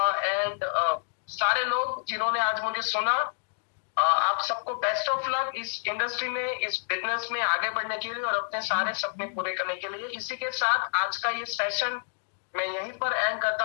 एंड सारे लोग जिन्होंने आज मुझे सुना। आप सबको बेस्ट ऑफ लक इस इंडस्ट्री में, इस बिजनेस में आगे बढ़ने के लिए और अपने सारे सपने पूरे करने के लिए। इसी के साथ आज का ये सेशन मैं यहीं पर एंड करता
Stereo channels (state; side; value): silent; right; digital silence